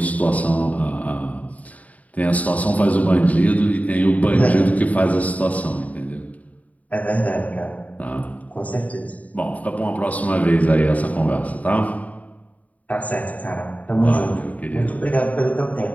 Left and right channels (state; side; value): late; right; 0.071 ms